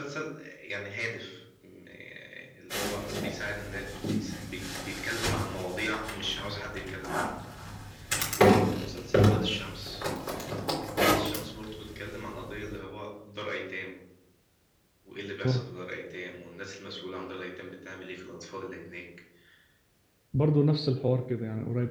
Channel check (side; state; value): both; identical; correlation 1.00